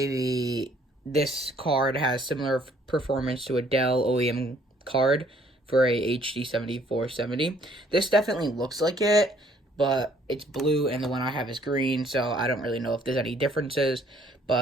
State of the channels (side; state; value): both; normal; correlation 0.62